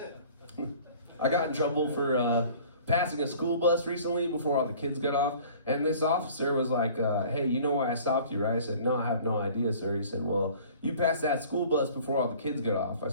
I got in trouble for passing a school bus recently before all the kids got off, and this officer was like, hey, you know why I stopped you, right? I said, no, I have no idea, sir. He said, well, you passed that school bus before all the kids got off. I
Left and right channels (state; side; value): inverted; both; correlation -0.49